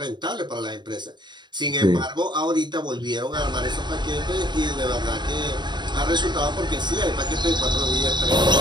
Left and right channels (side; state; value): left; late; 0.21 ms